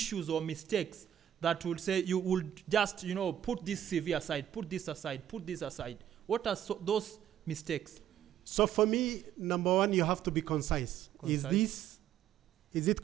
or mistakes that would say you would just, put this CV aside, put this aside, put this aside? What are those mistakes? So for me, number one, you have to be concise. Is it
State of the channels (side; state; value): left; quieter; 10.8 dB